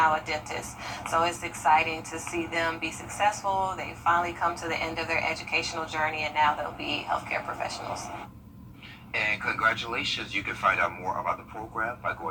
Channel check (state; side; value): identical; both; correlation 1.00